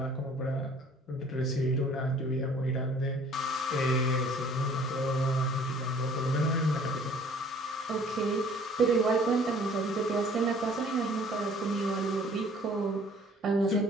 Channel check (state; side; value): normal; both; correlation 0.54